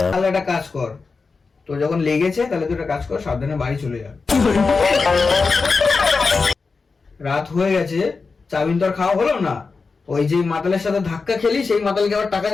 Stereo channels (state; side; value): quieter; right; 4.4 dB